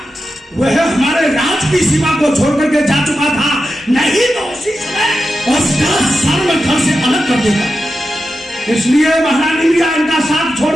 वह हमारे राज की सीमा को छोड़ करके जा चुका था, नहीं तो उसी समय उसका सर में घर से अलग कर देगा। इसलिए महारानी मीरा इनका साथ छोड़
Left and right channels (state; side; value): normal; both; correlation 0.90